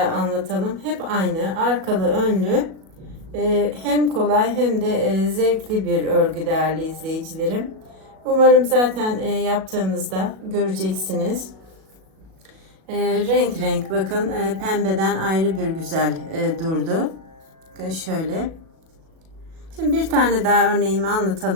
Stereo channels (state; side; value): late; left; 37 ms